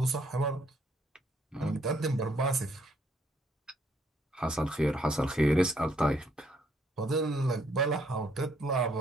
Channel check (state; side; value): normal; both; correlation 0.69